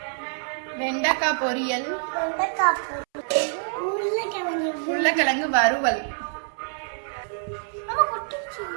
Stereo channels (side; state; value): left; silent; 61 dB below the other